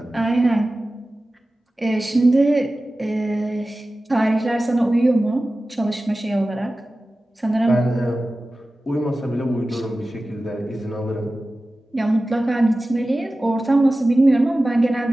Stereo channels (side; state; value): both; normal; correlation 0.96